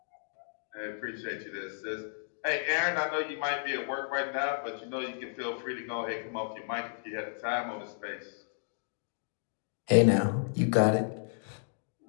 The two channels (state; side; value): silent; right; digital silence